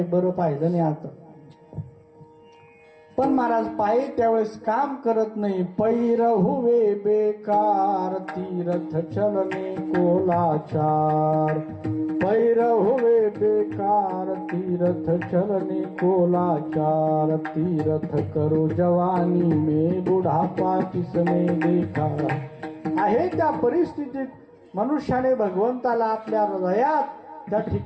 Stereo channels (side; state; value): both; identical; correlation 1.00